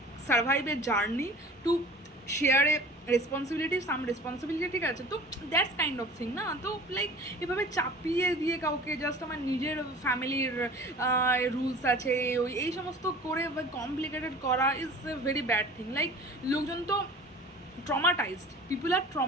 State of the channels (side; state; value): both; normal; correlation 0.43